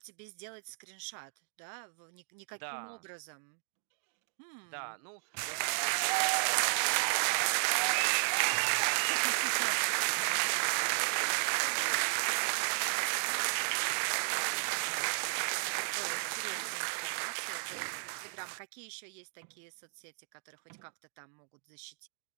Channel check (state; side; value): silent; left; digital silence